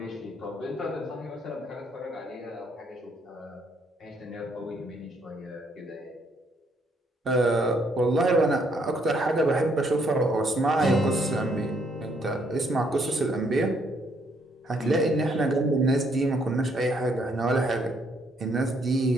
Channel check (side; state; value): both; normal; correlation 0.70